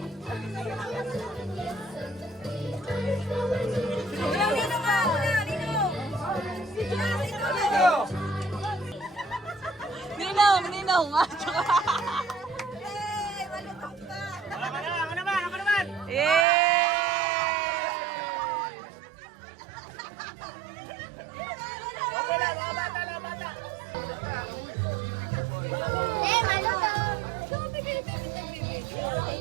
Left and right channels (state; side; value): drops out; left; at 16.4 s